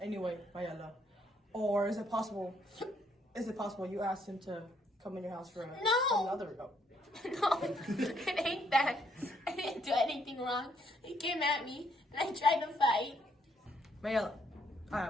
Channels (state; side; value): normal; both; correlation 0.71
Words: anyway, Mayella? Or is it possible you asked him to come in your house for No! another? Oh. No, it ain't that. I didn't do anything wrong. He came at me and I tried to fight. Mayella, I